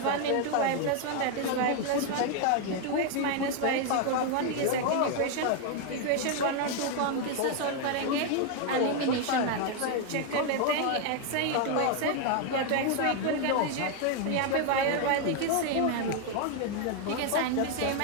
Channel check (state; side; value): different; both; correlation 0.01